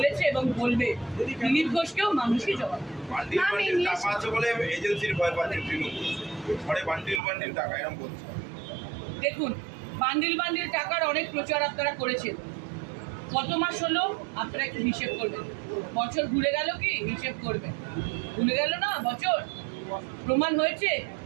এবং বলবে। দিলীপ ঘোষকেও মানুষই জবাব বান্ডিল বান্ডিল টাকা আছে বলে এজেন্সির ভয় পাচ্ছে তৃণমূল, ঘরে বান্ডিল বান্ডিল টাকা এরকম বলছে। দেখুন, বান্ডিল বান্ডিল টাকার অনেক প্রচার আপনারা করেছেন। কত মাস হলো আপনারা একটু হিসেব করবেন। বছর ঘুরে গেল কি হিসেব করবেন? ভুলে গেল না বছর? প্রমাণ হয়েছে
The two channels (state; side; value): drops out; left; at 7.2 s